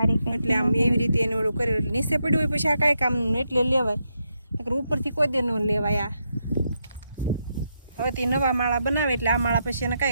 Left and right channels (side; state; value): both; inverted; correlation -0.82